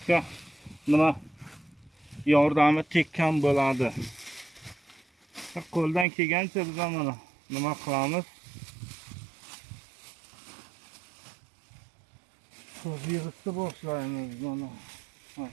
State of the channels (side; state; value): left; drops out; at 6.1 s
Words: nima yordami tekkan bo'ladi. Qo'ldan kelgancha biz mana nima qilamiz? Yig'ishni boshlaymiz mana.